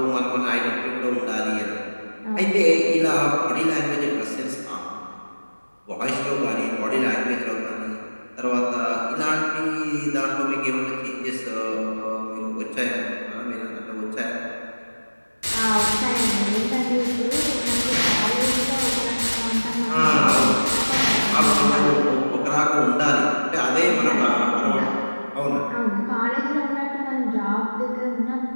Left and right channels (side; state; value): both; inverted; correlation -1.00